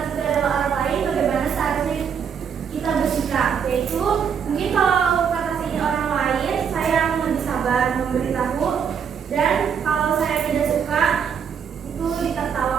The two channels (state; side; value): quieter; left; 7.3 dB